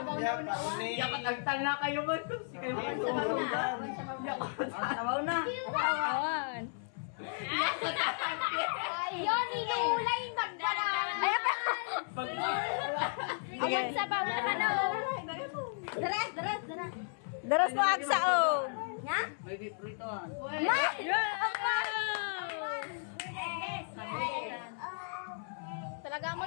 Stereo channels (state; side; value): silent; right; 55 dB below the other